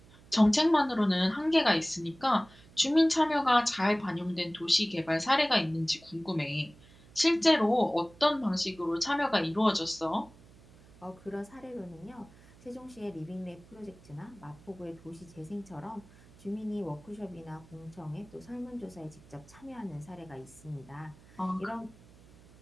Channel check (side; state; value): right; noise; hum, 24 dB below the sound